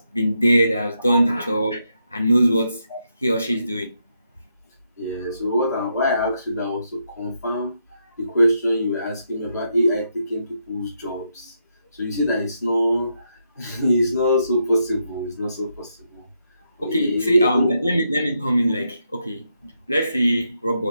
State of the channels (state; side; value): inverted; both; correlation -0.80